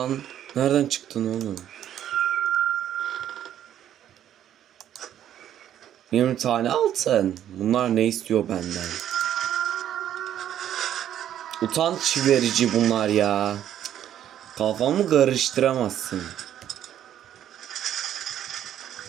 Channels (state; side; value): quieter; left; 10.8 dB